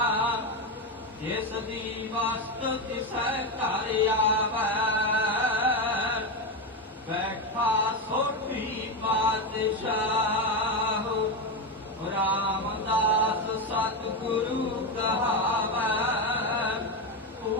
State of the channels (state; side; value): normal; both; correlation 0.12